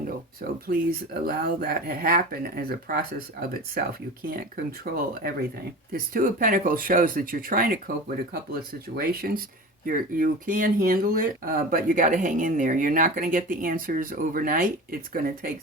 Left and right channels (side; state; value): both; normal; correlation 0.33